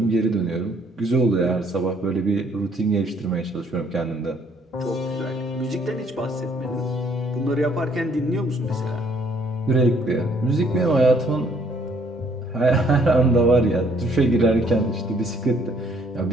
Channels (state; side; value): normal; both; correlation 0.64